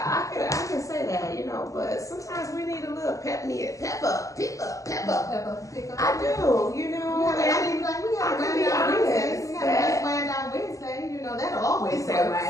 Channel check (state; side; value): late; right; 0.16 ms